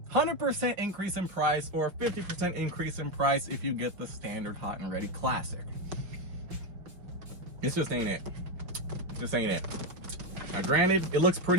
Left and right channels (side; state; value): left; late; 5.5 ms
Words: 100% increase in price or 50% increase in price if you get the standard hot and ready classic. This just ain't it. Just ain't it. Now granted, it looks